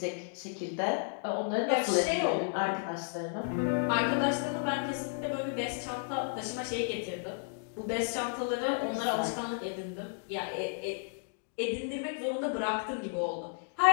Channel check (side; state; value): right; silent; digital silence